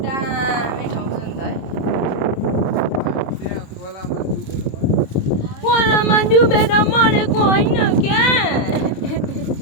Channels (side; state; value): right; late; 26 ms